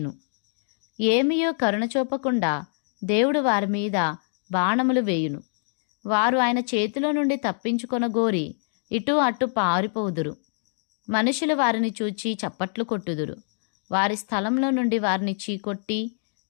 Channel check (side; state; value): right; silent; 62 dB below the other